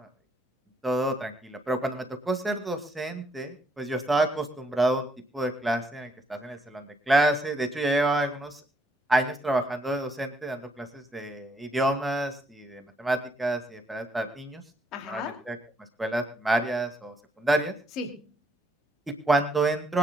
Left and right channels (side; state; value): both; normal; correlation 0.73